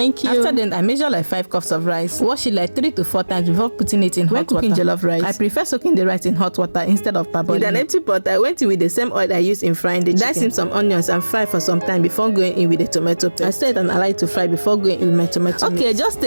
you. After then, I measure like 5 cups of rice. Wash it like 3 to 4 times before putting it in hot water. When cooking jollof rice, I prefer soaking the rice in hot water instead of parboiling. With an empty pot, I went in with the same oil I used in frying the chicken. Dice in some onions and fry for some time before going in with the tomato paste. I set and allow it to fry before going in with my tomato mix. Just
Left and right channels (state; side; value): inverted; both; correlation -1.00